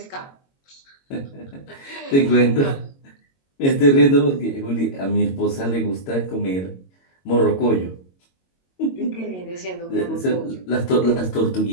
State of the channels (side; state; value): right; late; 22 ms